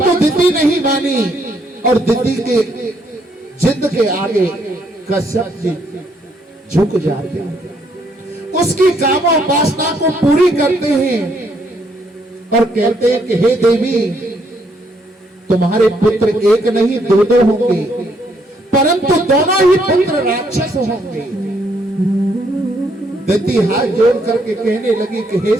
दिति नहीं मानी और दिति के जिद के आगे कश्यप जी झुक जाते हैं, उसकी कामोपासना को पूरी करते हैं और कहते हैं कि हे देवी, तुम्हारे पुत्र एक नहीं दो होंगे, परंतु दोनों ही पुत्र राक्षस होंगे। दिति हाथ जोड़ करके कहने लगी कि हे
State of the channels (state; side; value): normal; both; correlation 0.71